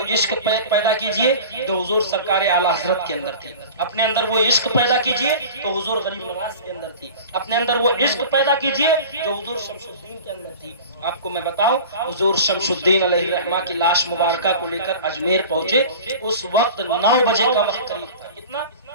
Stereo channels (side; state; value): both; inverted; correlation -0.37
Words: عشق پیدا کیجئے جو حضور سرکار اعلی حضرت کے اندر تھی. اپنے اندر وہ عشق پیدا کیجئے تو حضور غریب نواز کے اندر تھی. اپنے اندر وہ عشق پیدا کیجئے جو حضور شمس الدین کے اندر تھی. آپ کو میں بتاؤں، حضور شمس الدین علیہ الرحمہ کی لاش مبارکہ کو لے کر اجمیر پہنچے. اس وقت 9 بجے کا وقت قریب تھا. کتنا